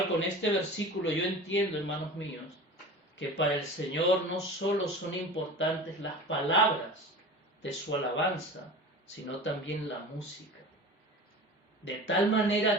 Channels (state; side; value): normal; both; correlation 0.35